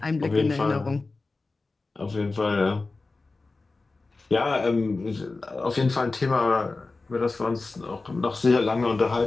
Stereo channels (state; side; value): quieter; right; 3.6 dB